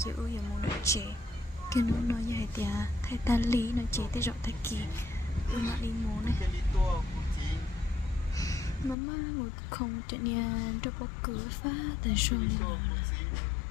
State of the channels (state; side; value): drops out; right; at 9.0 s